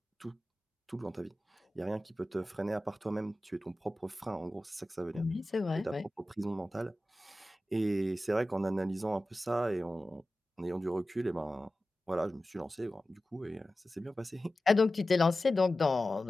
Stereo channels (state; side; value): normal; both; correlation 0.95